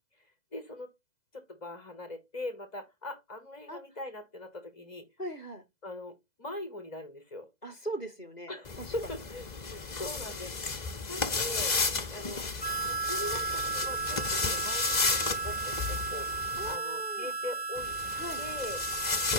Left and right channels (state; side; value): late; right; 2.0 ms